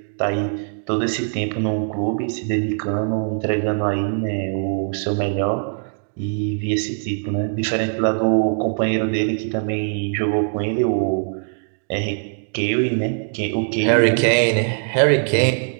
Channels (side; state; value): left; silent; digital silence